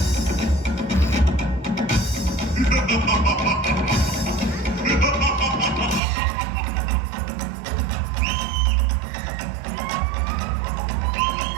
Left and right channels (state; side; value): drops out; left; at 6.0 s